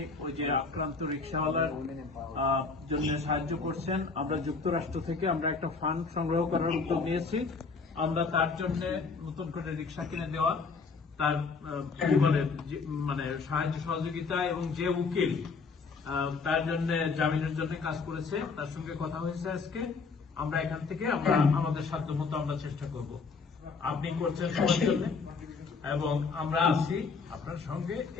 ওই যে আক্রান্ত রিক্সাওয়ালার জন্য সাহায্য করছেন। আমরা যুক্তরাষ্ট্র থেকে আমরা একটা ফান্ড সংগ্রহ করার উদ্যোগ নিয়েছি। আমরা তার জন্য নতুন করে রিক্সা কিনে দেওয়া, তার কি বলে মানে সাহায্য সহযোগিতা, এবং যে উকিল তার জন্য জামিনের জন্য কাজ করেছে, তার সঙ্গে কথা হয়েছে আজকে। আমরা এখান থেকে আমরা আমাদের সাধ্য মতো আমরা চেষ্টা করব। আপনি করছেন সবার জন্য, এবং আমরা আছি আপনার সঙ্গে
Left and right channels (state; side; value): quieter; right; 4.6 dB